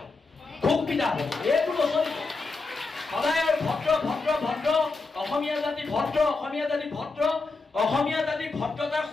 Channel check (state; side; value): quieter; right; 3.8 dB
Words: খুব পিতা হ'ব। এইটো নচলিব। সদায় আৰু ভদ্ৰ অসমীয়া জাতি ভদ্ৰ, অসমীয়া জাতি ভদ্ৰতাৰ